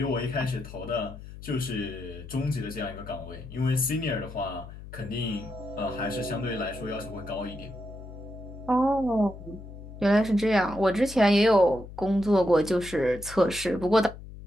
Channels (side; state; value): left; noise; hum, 14 dB below the sound